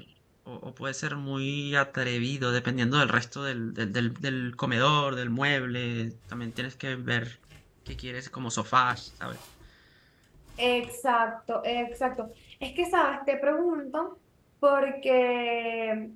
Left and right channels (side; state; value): both; identical; correlation 1.00